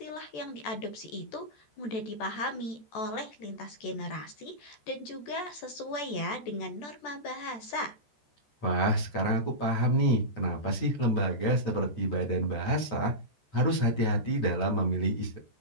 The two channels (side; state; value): right; late; 14 ms